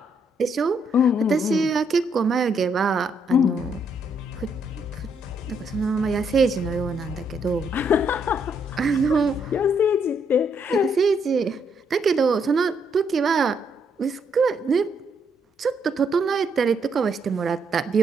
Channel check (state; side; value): normal; both; correlation 0.73